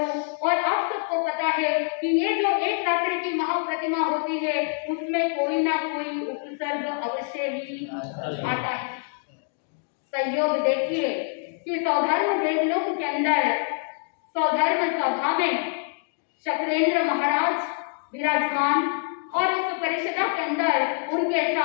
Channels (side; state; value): right; silent; 61 dB below the other